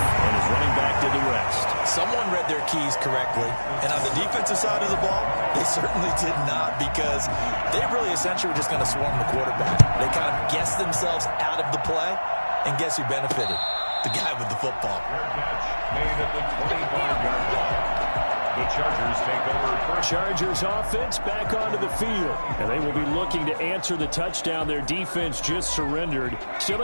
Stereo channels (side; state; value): both; inverted; correlation -1.00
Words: and his running back did the rest. Someone read their keys correctly, and on the defensive side of the ball, they certainly did not, because they really essentially were just going to swarm the quarterback. They kind of guessed themselves out of the play, and guess who benefited? The guy with the football. Made at the 25-yard line. The Chargers take over first. Chargers offense back onto the field, and they will be looking to answer the touchdown their defense just surrendered. Still